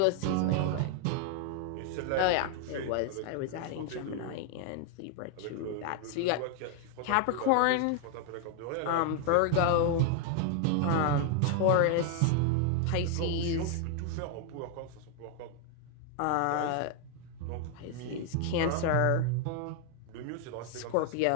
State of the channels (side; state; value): both; different; correlation 0.00